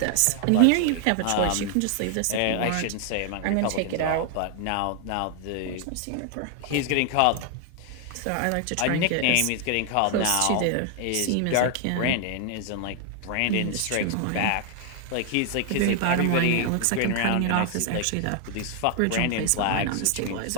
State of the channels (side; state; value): both; different; correlation 0.00